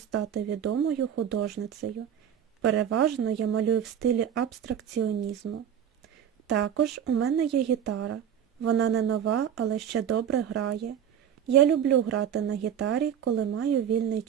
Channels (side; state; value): left; quieter; 9.1 dB